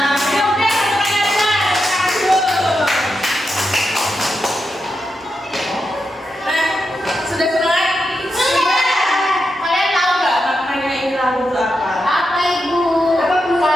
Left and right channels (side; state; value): both; normal; correlation 0.86